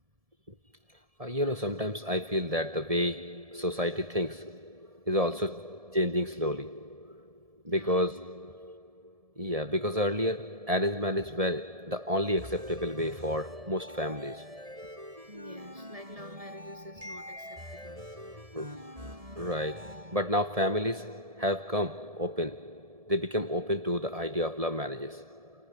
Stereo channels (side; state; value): left; late; 1.7 ms